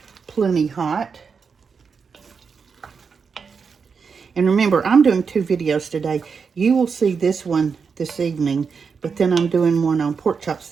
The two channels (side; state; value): left; quieter; 5.7 dB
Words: plenty hot. And remember, I'm doing 2 videos today. You will see this one this evening, but then I'm doing one on pork chops